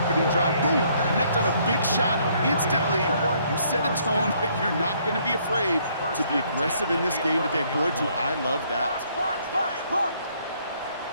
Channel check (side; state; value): both; inverted; correlation -0.66